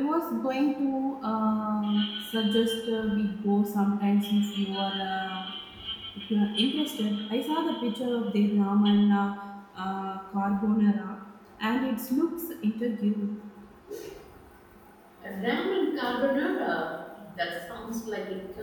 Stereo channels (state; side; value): identical; both; correlation 1.00